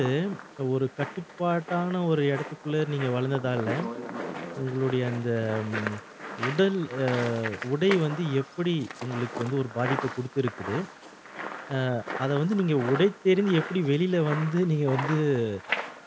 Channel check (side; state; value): both; identical; correlation 1.00